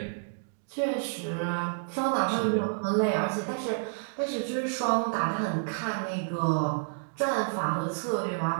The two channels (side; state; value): left; silent; digital silence